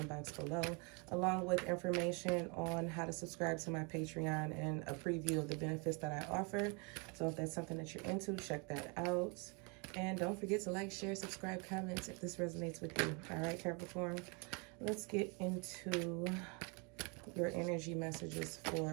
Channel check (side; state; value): left; quieter; 32.9 dB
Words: box below, along with information on how to subscribe to my Patreon and a preview of the benefits that I offer. So if that's something that you're into, check that out. And don't forget to like, share, subscribe, comment if this resonates with you. All right, Capricorn, let's get into your energy messages